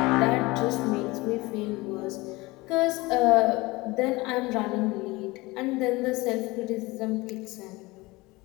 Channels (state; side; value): quieter; right; 22.1 dB